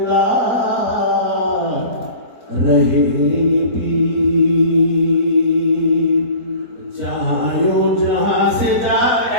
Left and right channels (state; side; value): late; left; 4.1 ms